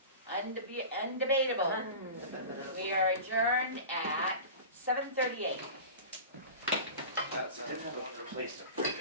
Undebatable. We are adjourned at 7:38. That's a wonderful place to break.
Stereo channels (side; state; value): both; inverted; correlation -0.33